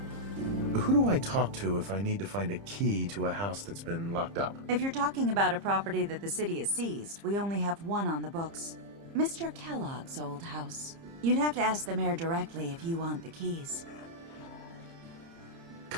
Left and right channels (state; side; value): late; left; 30 ms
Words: Who do I talk to if I need to find a key to a house that's been locked up? If you're talking about a property that the city has seized, we only have one on the books. Mr. Kellogg's old house. You'd have to ask the mayor directly if you want the keys.